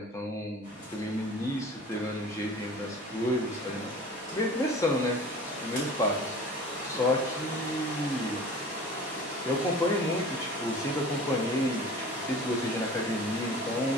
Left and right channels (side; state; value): both; normal; correlation 0.41